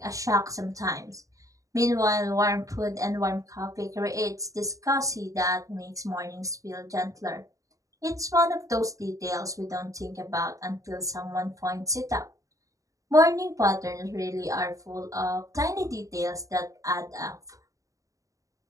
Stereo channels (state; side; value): late; left; 0.16 ms